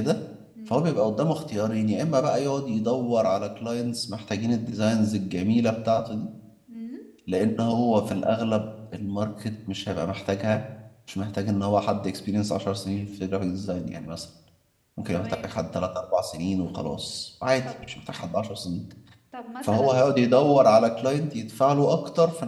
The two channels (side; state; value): both; identical; correlation 1.00